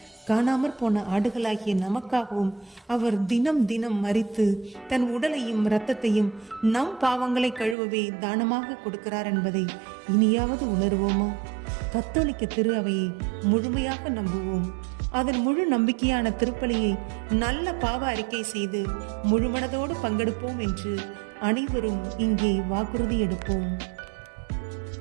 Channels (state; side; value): drops out; left; at 7.8 s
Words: காணாமற் போன ஆடுகளாகிய நமக்காகவும் அவர் தினம் தினம் மரித்து தன் உடலையும் இரத்தத்தையும் நம் பாவங்களை கழுவவே தானமாக கொடுக்கிறார் என்பதை இனியாவது உணர்வோமா? கத்தோலிக்க திரு அவையை முழுமையாக நம்புவோம். அதன் முழு நம்பிக்கையான திருப்பலியை நல்ல பாவ அறிக்கை செய்து முழுமனதோடு பங்கெடுப்போம் என்று அனைவரும் இங்கே வாக்குறுதி எடுப்போம்.